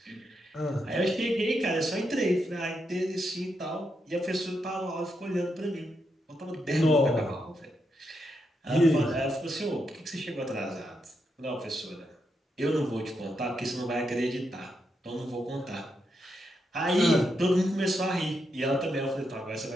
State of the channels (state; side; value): normal; both; correlation 0.82